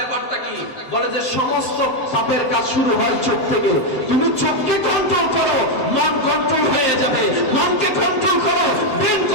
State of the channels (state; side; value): late; right; 7.8 ms